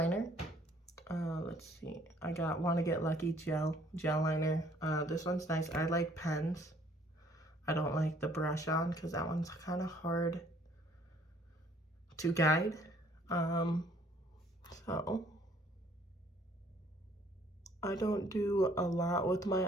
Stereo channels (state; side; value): normal; both; correlation 0.60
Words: let's see, I got Wanna Get Lucky gel liner. This one's nice. I like pens. I don't like the brush on because that one's kind of hard to guide. So I don't do a lot with my